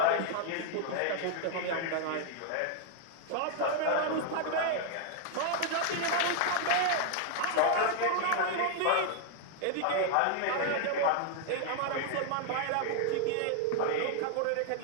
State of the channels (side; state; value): both; different; correlation -0.01